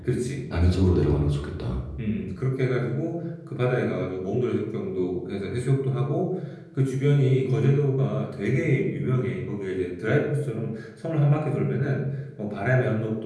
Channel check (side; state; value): both; identical; correlation 1.00